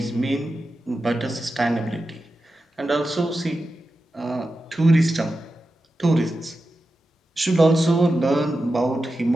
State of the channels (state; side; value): normal; both; correlation 0.91